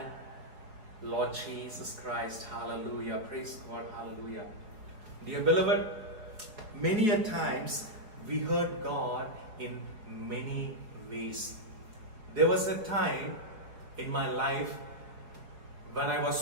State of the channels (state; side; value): late; left; 4.8 ms